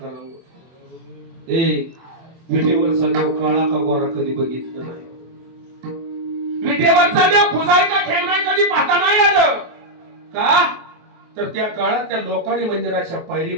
विटेवरचा देव काळा का गोरा कधी बघितलं नाही. विटेवरचा देव खुजाय का ठेवणाय कधी पाहता नाही आलं का? तर त्या काळात त्या लोकांनी मंदिराच्या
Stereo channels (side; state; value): left; late; 24 ms